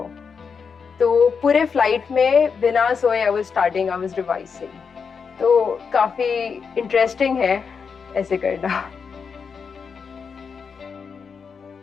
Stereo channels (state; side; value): quieter; right; 5.9 dB